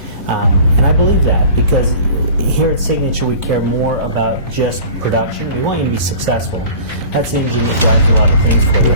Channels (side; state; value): both; inverted; correlation -0.42